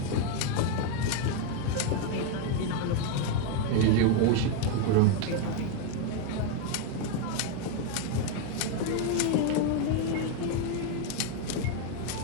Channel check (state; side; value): different; both; correlation 0.01